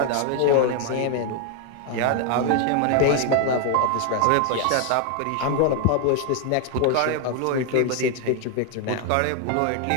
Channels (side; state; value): both; different; correlation 0.00